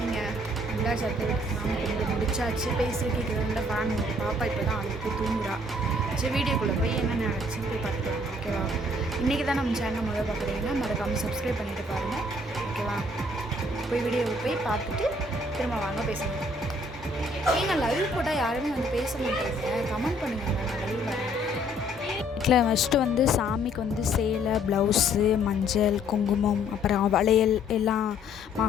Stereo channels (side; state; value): both; normal; correlation 0.62